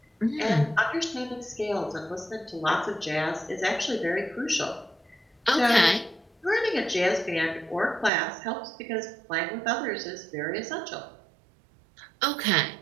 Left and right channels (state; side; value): drops out; left; at 8.1 s